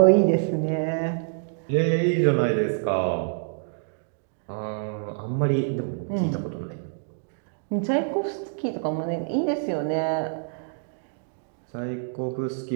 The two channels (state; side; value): silent; left; digital silence